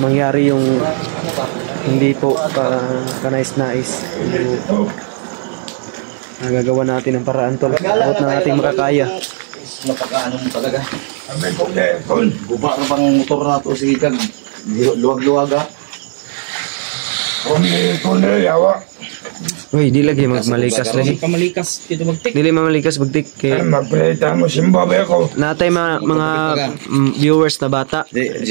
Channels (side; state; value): left; silent; digital silence